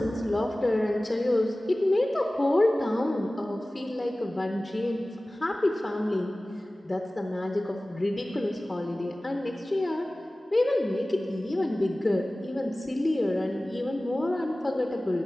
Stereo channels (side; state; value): both; normal; correlation 0.97